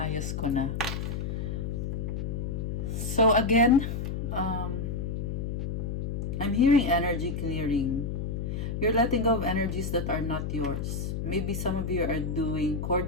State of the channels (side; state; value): left; noise; hum, 3 dB below the sound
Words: ko na. So again, I'm hearing energy clearing. You're letting go of energies that are not yours. Maybe some of you are doing